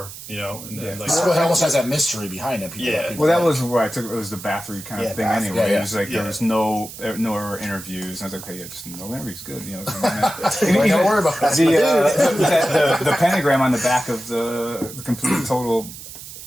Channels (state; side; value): noise; right; hiss, 13 dB below the sound